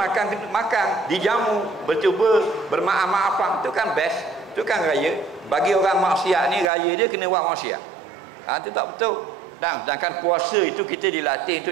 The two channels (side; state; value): left; drops out; at 6.7 s